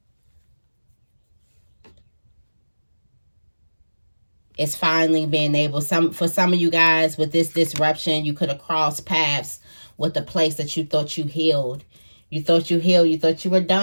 It's finally being able, for some of you guys with this disruption, you could have crossed paths with the place that you thought you healed. You thought you healed. You thought you were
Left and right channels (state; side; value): inverted; both; correlation -1.00